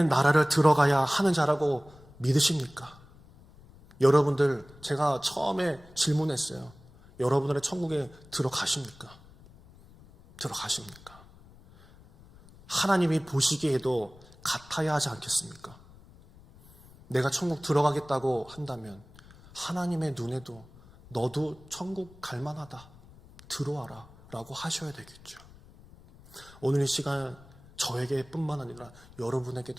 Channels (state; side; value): noise; left; rumble, 23 dB below the sound